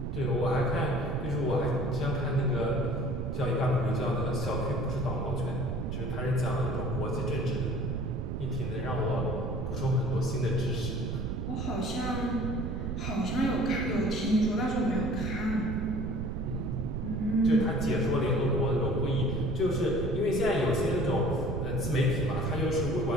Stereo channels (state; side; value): noise; right; rumble, 2 dB below the sound